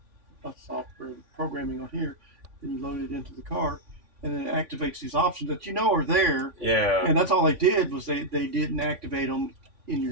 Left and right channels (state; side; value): late; left; 3.5 ms